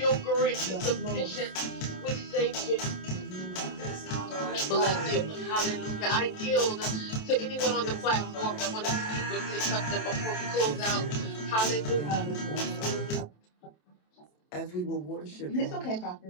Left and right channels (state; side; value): late; right; 27 ms